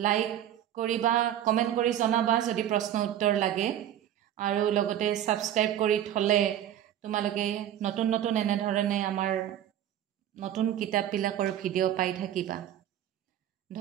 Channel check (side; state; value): left; quieter; 11.1 dB